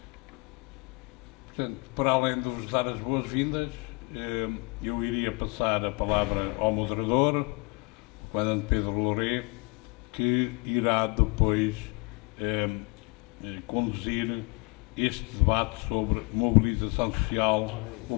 Portanto, para além de vos dar as boas-vindas, eu iria passar a palavra ao moderador, o comandante Pedro Louret, que irá depois conduzir este debate sobre mobilização social,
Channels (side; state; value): right; quieter; 29.1 dB